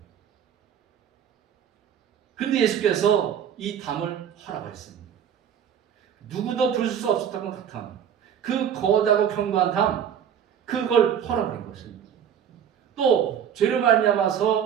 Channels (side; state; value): left; quieter; 8.6 dB